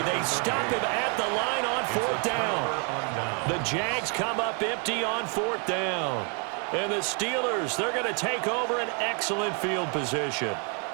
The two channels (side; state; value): left; quieter; 37.3 dB